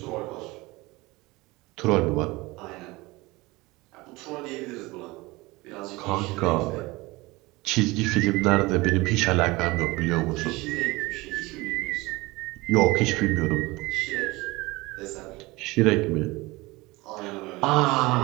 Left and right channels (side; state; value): left; quieter; 21.9 dB